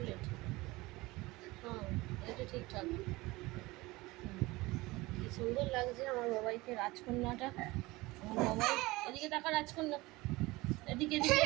হ্যাঁ এটা ঠিকঠাক। কি সুন্দর লাগছে আমার বাবাইকে, রাজকন্যাটা। আমার বাবাই এদিকে তাকা, রাজকন্যা এদিকে এদিকে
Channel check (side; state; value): left; quieter; 21.1 dB